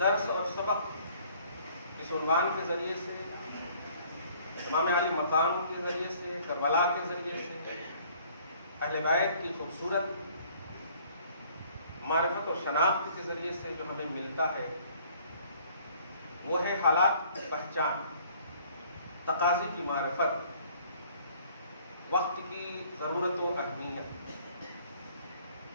اور سبق اس عنوان کے ذریعے سے، امام علی مقام کے ذریعے سے، کربلا کے ذریعے سے، اہل بیت کی خوبصورت معرفت و شناخت کے ذریعے سے جو ہمیں ملتا ہے، وہ ہے حالات کی پہچان، تقاضے کی معرفت، وقت کی ضرورت و اہمیت،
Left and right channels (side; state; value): both; inverted; correlation -0.58